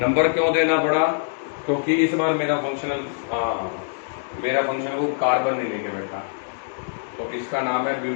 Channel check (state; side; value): silent; right; digital silence